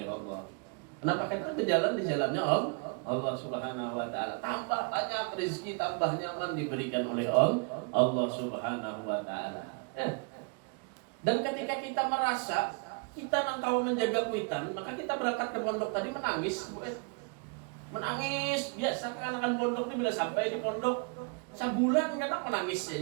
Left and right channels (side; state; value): left; quieter; 34.4 dB